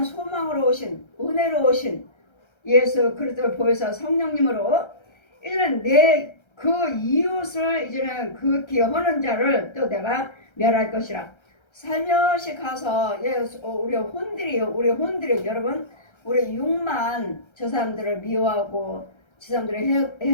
소망으로 오신 은혜로 오신 예수 그리스도를 보여서 성령님으로 이제는 내 그 이웃을 이제는 그 기여하는 자를 또 내가 멸할 것이라. 살며시 가서 우리 혼들이 여러분 우리 육만 저 사람들을 미워하고 저 사람들을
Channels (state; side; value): late; right; 1.3 ms